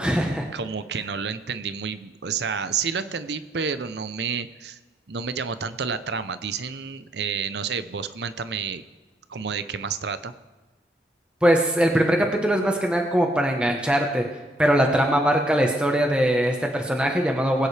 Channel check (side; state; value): both; normal; correlation 0.71